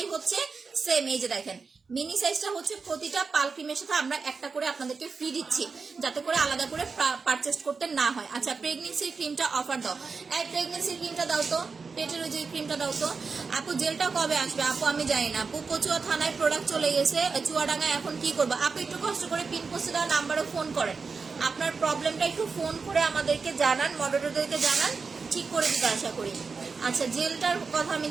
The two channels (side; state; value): left; quieter; 4.8 dB